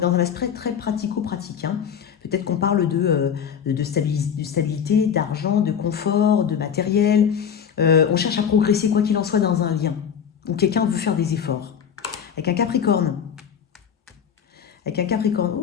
dans un aspect très pratico-pratique. Hein. Peut-être qu'on parle de stabilité, d'argent, de confort, de matériel. On cherche à progresser quoi qu'il en soit dans un lien. Ou quelqu'un veut faire des efforts. Avec un Capricorne.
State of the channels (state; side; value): quieter; right; 7.9 dB